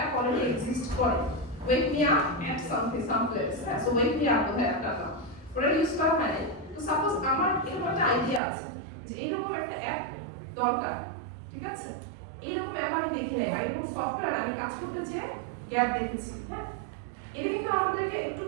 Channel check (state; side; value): drops out; left; at 8.4 s